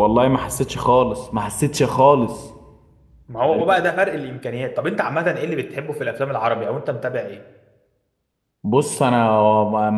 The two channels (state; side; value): identical; both; correlation 1.00